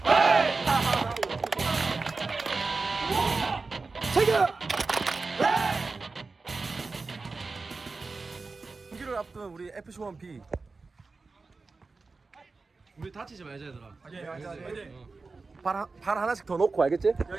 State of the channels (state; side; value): quieter; left; 4.0 dB